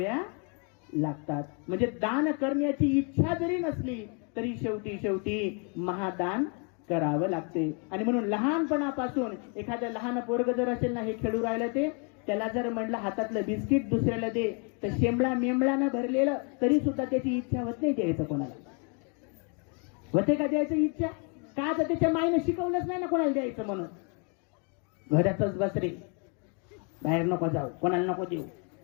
लागतात. म्हणजे दान करण्याची इच्छा जरी नसली तरी शेवटी महादान करावं लागते. आणि म्हणून लहानपणापासून एखादं लहान पोरग जर असेल ना, हे खेळू राहिलं, ते त्याला जर म्हणलं हातातलं बिस्किट दुसऱ्याला दे, तर शेंबळा मेंबळानं भरलेलं तरी सुद्धा त्याची इच्छा होत नाही द्यायचं कोणाला. होते का द्यायचं इच्छा? का? तर त्याच्या माईनं शिकवलंच नाही ना कोणाला द्यायचं म्हणून. घरातच बस रे, बाहेर नको जाऊ, कोणाला नको देऊ,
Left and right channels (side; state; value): right; quieter; 37.0 dB